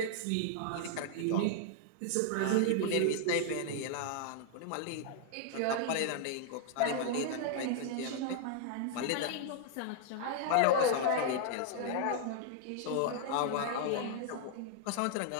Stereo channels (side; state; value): both; different; correlation -0.01